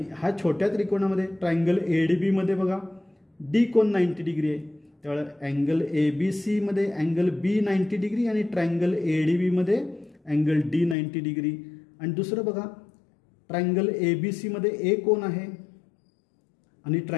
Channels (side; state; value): right; drops out; at 11.0 s